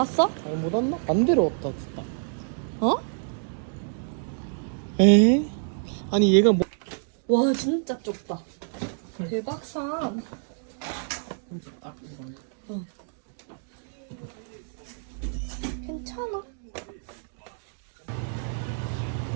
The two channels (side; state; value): left; silent; digital silence